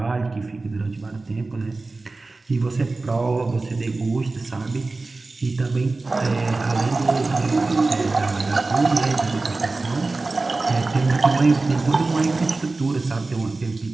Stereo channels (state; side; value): quieter; left; 3.4 dB